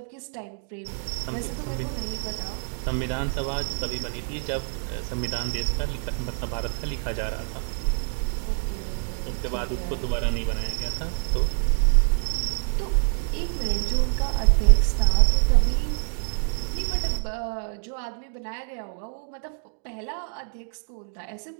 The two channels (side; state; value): left; silent; 61 dB below the other